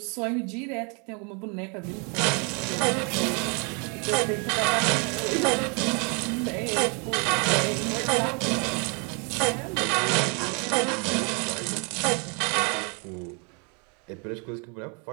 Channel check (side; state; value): left; quieter; 34.7 dB